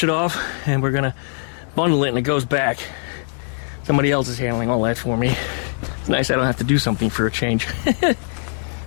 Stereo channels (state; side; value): silent; right; digital silence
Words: it off, and we're going to bundle it, and it goes back. Somebody else is handling all that for me. It's nice I don't have to do something for a change.